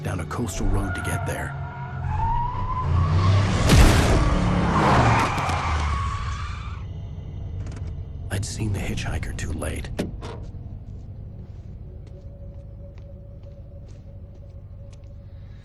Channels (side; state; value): both; identical; correlation 1.00